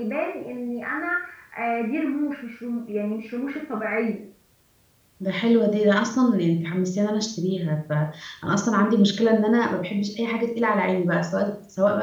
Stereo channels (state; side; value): identical; both; correlation 1.00